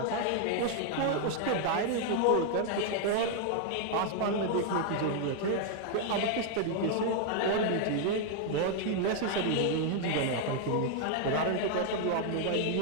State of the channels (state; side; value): different; both; correlation 0.00